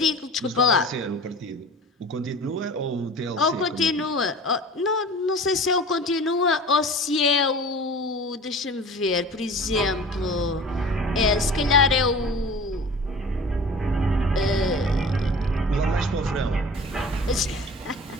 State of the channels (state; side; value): normal; both; correlation 0.41